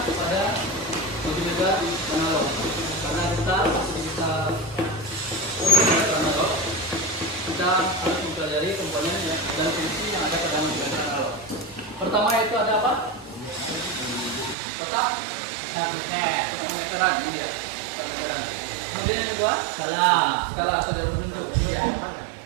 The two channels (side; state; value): left; drops out; at 14.6 s